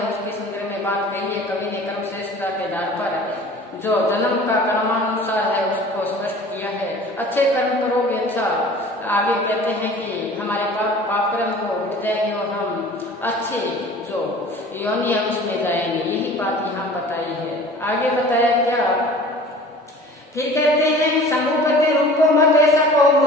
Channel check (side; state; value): both; normal; correlation 0.44